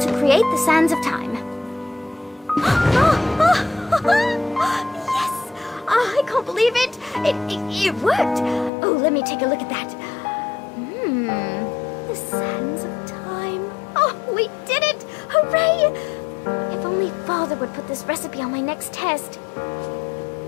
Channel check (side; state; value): right; drops out; at 8.7 s